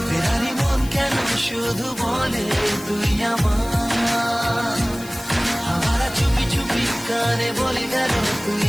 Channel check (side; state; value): left; noise; hiss, 16 dB below the sound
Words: ফেরারি মন কেন শুধু বলে তুই আমার। আবার চুপি চুপি কানে বলে গেল তুই